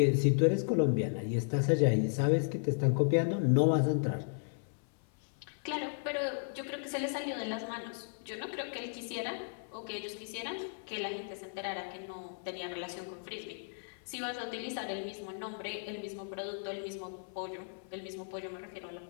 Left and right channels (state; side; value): silent; right; 55 dB below the other